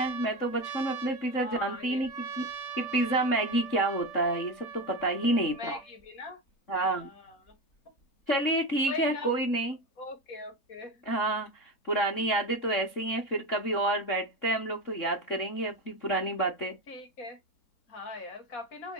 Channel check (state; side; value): late; right; 3.7 ms